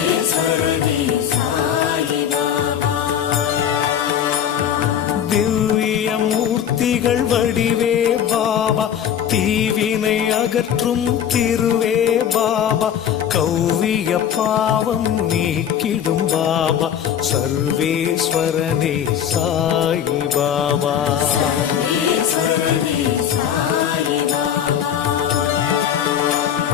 திவ்ய மூர்த்திகள் வடிவே பாபா தீவினை அகற்றும் திருவே பாபா கௌவிய பாவம் நீக்கிடும் பாபா சர்வேஸ்வரனே சாயி பாபா.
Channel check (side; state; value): right; quieter; 9.3 dB